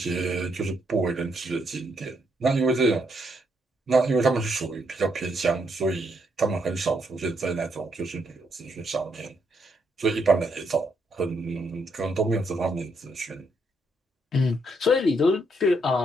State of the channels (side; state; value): both; normal; correlation 0.76